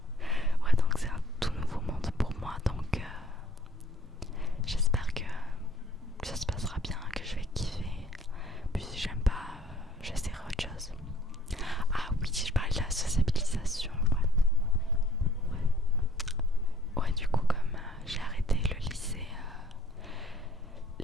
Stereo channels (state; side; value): normal; both; correlation 0.58